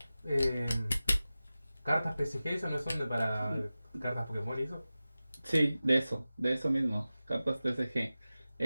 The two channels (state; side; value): inverted; both; correlation -0.96